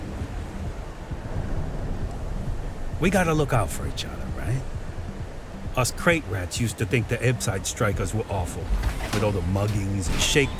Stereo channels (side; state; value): both; identical; correlation 1.00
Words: We gotta look out for each other, right? Us crate rats used to think the Ebbside strikers were awful, with all the muggings and